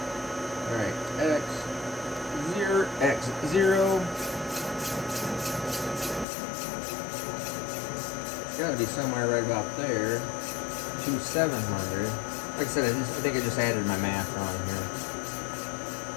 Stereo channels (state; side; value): drops out; right; at 6.2 s